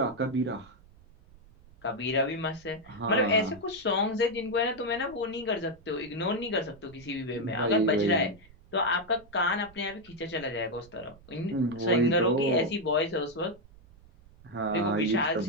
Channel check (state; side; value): noise; right; rumble, 24 dB below the sound